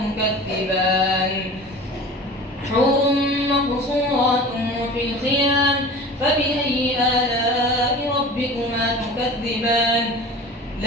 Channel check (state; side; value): normal; both; correlation 0.38